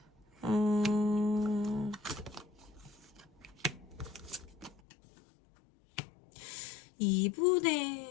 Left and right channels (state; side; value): drops out; right; at 4.8 s